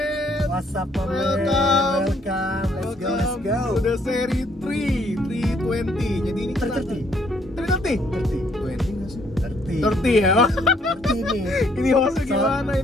What's up, my man? Welcome. Let's go. To the seri 320. Jadi ini kita 330? 20 nggak sih? 30 ya? 30 nih. Ini hostnya gimana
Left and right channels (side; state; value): both; normal; correlation 0.67